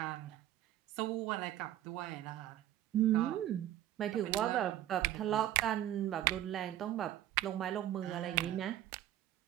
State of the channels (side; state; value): left; quieter; 12.8 dB